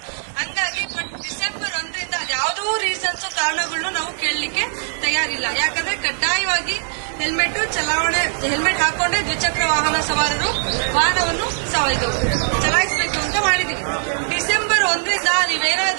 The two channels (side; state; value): left; silent; digital silence